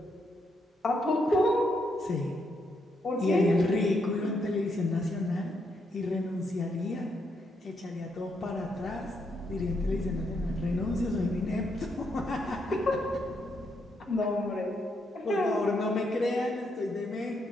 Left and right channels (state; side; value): normal; both; correlation 0.78